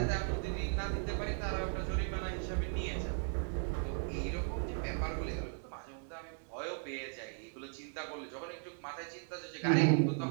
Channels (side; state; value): left; silent; 53 dB below the other